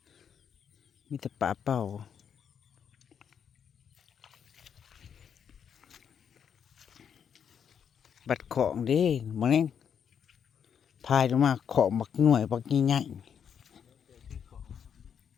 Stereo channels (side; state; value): right; quieter; 7.8 dB